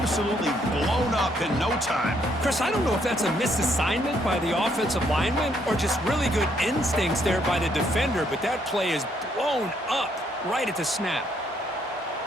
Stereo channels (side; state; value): both; normal; correlation 0.71